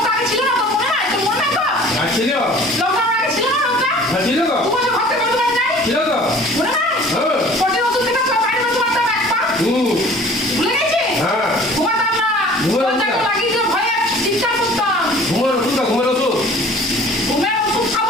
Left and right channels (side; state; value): both; normal; correlation 0.48